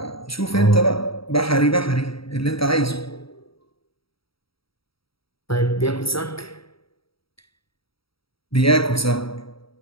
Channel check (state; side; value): late; right; 0.75 ms